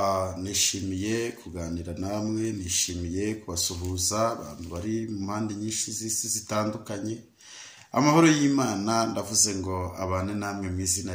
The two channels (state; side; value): identical; both; correlation 1.00